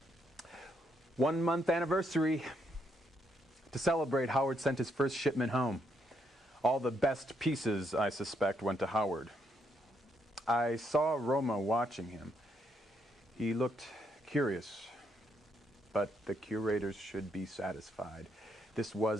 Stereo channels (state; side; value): normal; both; correlation 0.75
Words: One-month anniversary. To celebrate, Howard sent his first shipment home. All the best pieces, I suspect, went to Howard. I saw Roma watching him. He looked curious, but the curators should be satisfied. This